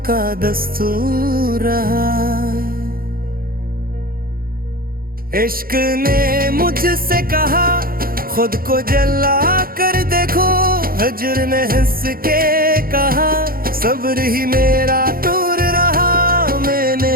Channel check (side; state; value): left; late; 0.42 ms